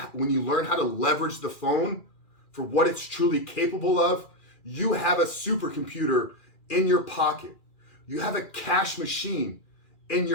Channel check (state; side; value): late; right; 2.4 ms